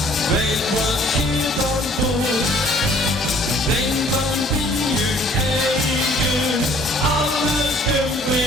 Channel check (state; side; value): normal; both; correlation 0.56